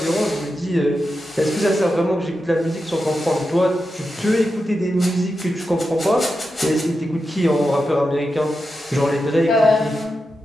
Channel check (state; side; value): normal; both; correlation 0.89